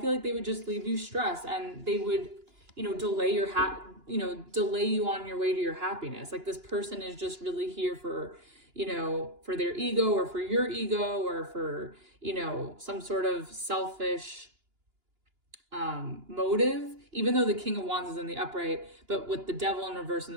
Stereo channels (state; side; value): late; left; 2.9 ms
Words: like they would just leave you stressed, and they would, delay you on your way to your happiness. Like, this person is just really here for, for their ego, or for your ego, or for, some sort of selfish motive, even though the King of Wands is in the upright. But with the Devil in reverse and